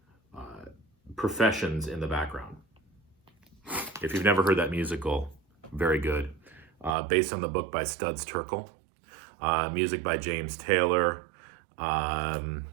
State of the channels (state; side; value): drops out; left; at 7.0 s